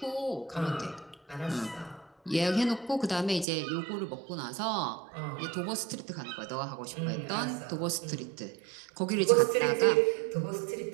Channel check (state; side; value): drops out; left; at 3.5 s